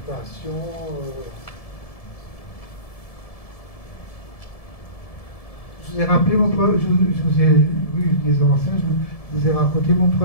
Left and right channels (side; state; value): right; late; 1.7 ms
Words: Je vous ai rappelé mon premier, je vous ai, oui, les anciens, je vous ai raconté mon